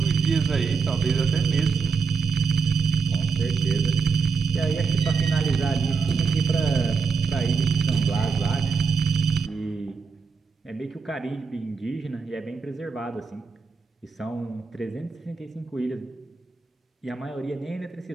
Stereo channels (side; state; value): left; quieter; 5.0 dB